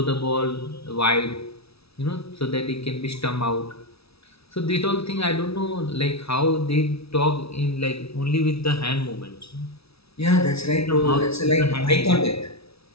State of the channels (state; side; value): late; right; 0.77 ms